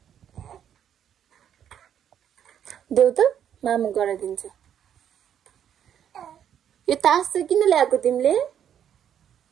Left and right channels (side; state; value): left; quieter; 9.4 dB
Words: देऊ त मामु गराइदिन्छु यो तास चाहिँ किन ल्याएको तिमीले